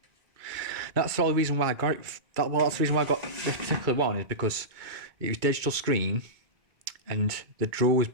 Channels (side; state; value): left; late; 2.2 ms